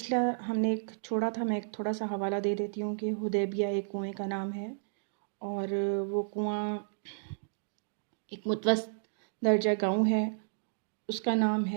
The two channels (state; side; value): silent; left; digital silence